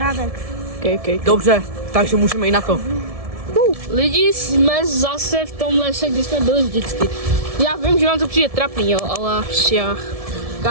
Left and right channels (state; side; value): late; left; 1.7 ms